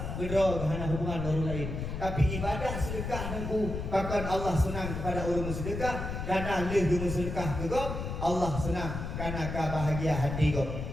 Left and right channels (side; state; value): left; noise; rumble, 5 dB below the sound